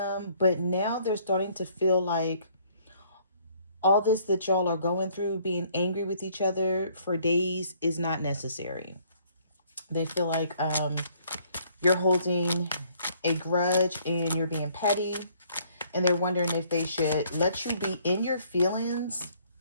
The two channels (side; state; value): both; inverted; correlation -0.62